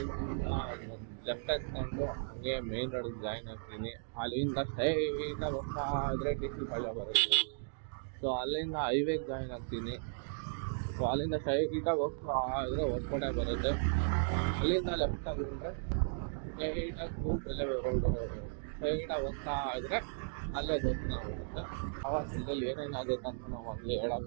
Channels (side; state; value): left; silent; digital silence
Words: ಲೆಫ್ಟ್ ಹಾಕ್ಕೊಂಡು ಹಂಗೆ ಮೇನ್ ರೋಡಿಗೆ ಜಾಯಿನ್ ಆಗ್ತೀನಿ. ಅಲ್ಲಿಂದ ಸ್ಟ್ರೈಟಾಗಿ ಹೋಗ್ತಾ ಇದ್ರೆ DC ಪಾಳ್ಯ ಬರುತ್ತೆ. ಸೊ ಅಲ್ಲಿಂದ ಹೈವೇಗೆ ಜಾಯಿನ್ ಆಗ್ತೀನಿ. ಸೊ ಅಲ್ಲಿಂದ ಸ್ಟ್ರೈಟಾಗಿ ಹೋಗ್ತಾ ಇದ್ರೆ ಹೊಸಕೋಟೆ ಬರುತ್ತೆ. ಅಲ್ಲಿಂದ ಲೆಫ್ಟ್ ಆಗಿದ್ರೆ ಸ್ಟ್ರೈಟಾಗಿ ಸೂಲ್ಬೆಲೆ ರೋಡು ಸ್ಟ್ರೈಟಾಗಿ ಹೋಗ್ತಾ ಇದ್ರೆ ಅಲ್ಲೇ ದೇವಸ್ಥಾನ ಬರುತ್ತೆ. ಆವಾಗ ಇಲ್ಲಿ ಏನೇನಾಗುತ್ತೆ ಅಂತ ನಾವು ಅಲ್ಲಿ